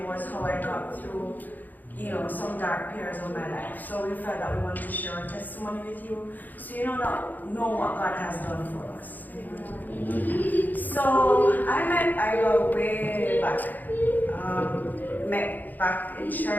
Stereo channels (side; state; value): right; late; 0.084 ms